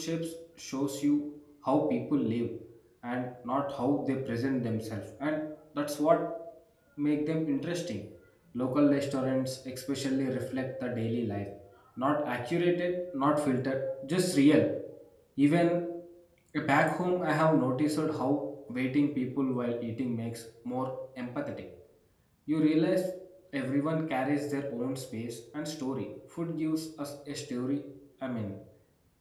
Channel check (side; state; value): both; identical; correlation 1.00